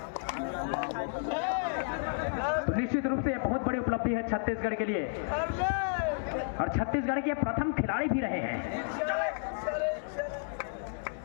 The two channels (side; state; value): right; silent; digital silence